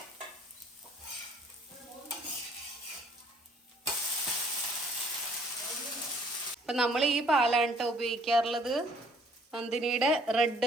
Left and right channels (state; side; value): normal; both; correlation 0.60